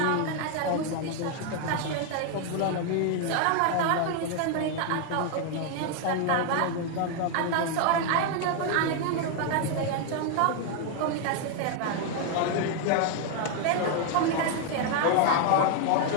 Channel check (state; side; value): different; both; correlation 0.00